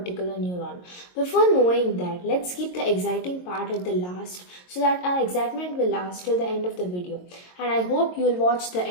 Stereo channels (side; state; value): right; late; 22 ms